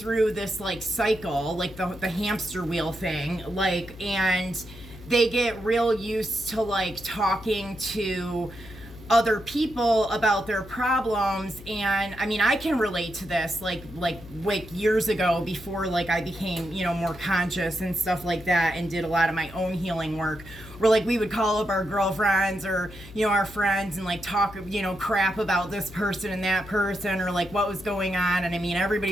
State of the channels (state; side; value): noise; left; hum, 17 dB below the sound